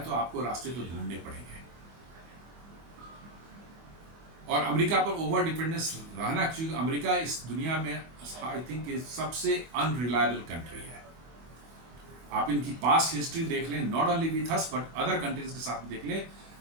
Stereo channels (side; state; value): left; late; 24 ms